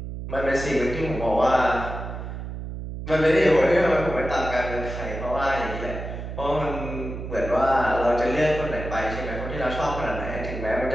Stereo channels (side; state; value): right; noise; hum, 7 dB below the sound